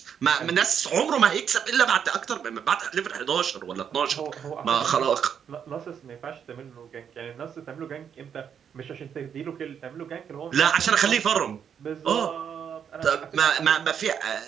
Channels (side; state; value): left; quieter; 7.9 dB